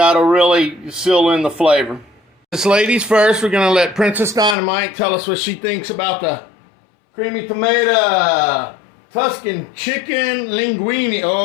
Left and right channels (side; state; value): right; drops out; at 4.5 s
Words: really seal in the flavor. This ladies first, we're going to let Princess Dynamite tell us what she thinks about the creamy tomato Tuscan chicken linguine.